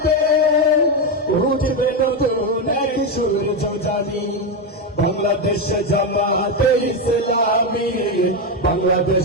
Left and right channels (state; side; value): normal; both; correlation 0.09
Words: উঠবে নতুন এক সূর্য জানি। বাংলাদেশ জামাতে ইসলামী,